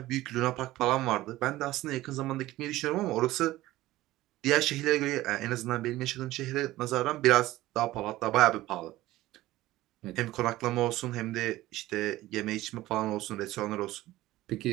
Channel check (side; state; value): left; quieter; 16.7 dB